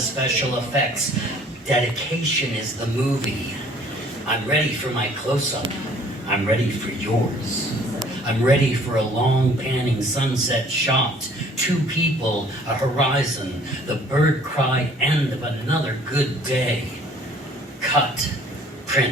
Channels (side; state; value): both; normal; correlation 0.55